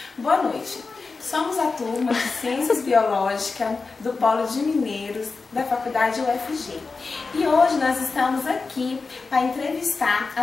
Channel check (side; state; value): right; quieter; 4.2 dB